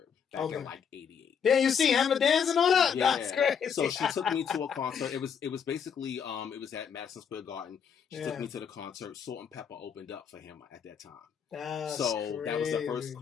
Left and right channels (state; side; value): quieter; right; 7.3 dB